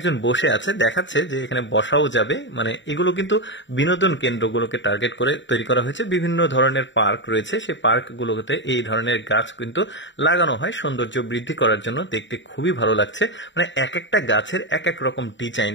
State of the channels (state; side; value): late; right; 0.54 ms